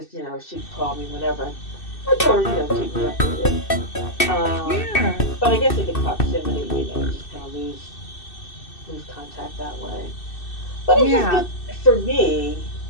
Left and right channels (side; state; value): right; late; 2.6 ms